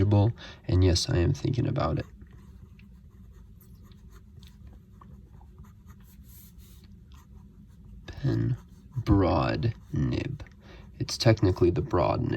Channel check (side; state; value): both; identical; correlation 1.00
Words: and yes, I am thinking about it. Pen broad nib. It's technically the broad